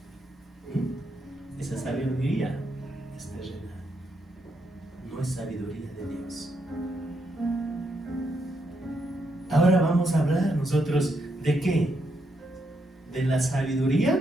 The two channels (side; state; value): both; normal; correlation 0.80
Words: Esa sabiduría es terrenal, no es sabiduría de Dios. Ahora vamos a hablar nosotros ¿de qué? De la